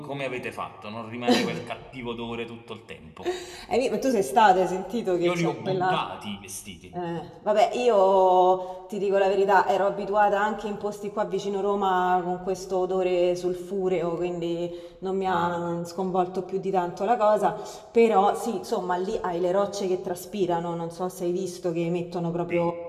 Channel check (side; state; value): both; identical; correlation 1.00